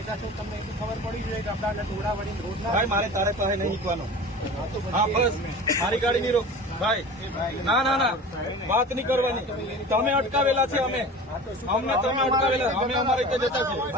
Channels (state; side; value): normal; both; correlation 0.37